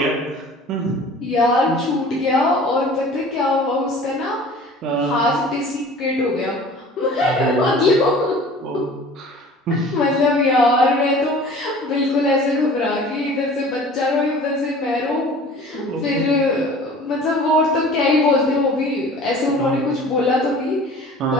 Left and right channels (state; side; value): normal; both; correlation 0.45